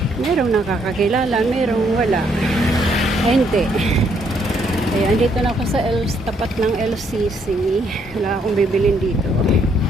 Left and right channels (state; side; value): normal; both; correlation 0.71